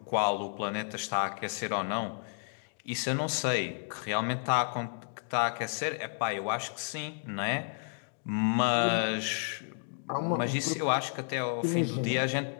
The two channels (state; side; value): silent; right; digital silence